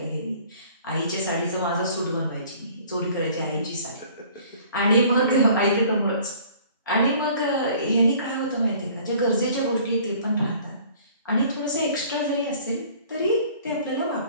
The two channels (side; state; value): both; inverted; correlation -0.52